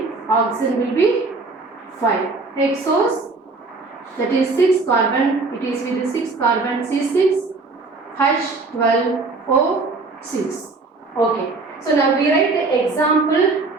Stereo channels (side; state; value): left; quieter; 3.7 dB